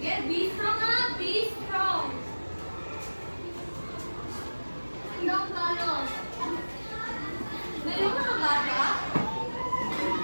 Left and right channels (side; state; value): both; inverted; correlation -1.00